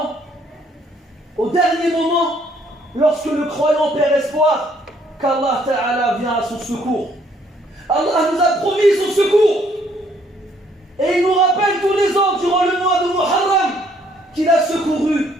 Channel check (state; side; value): normal; both; correlation 0.66